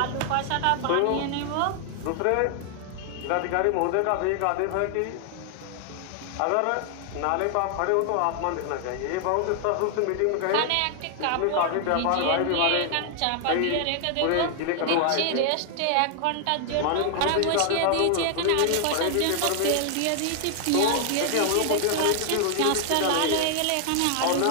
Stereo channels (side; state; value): both; different; correlation 0.00